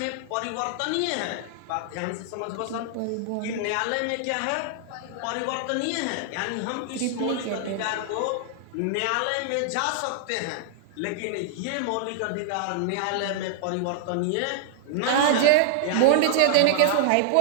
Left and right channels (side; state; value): both; different; correlation 0.00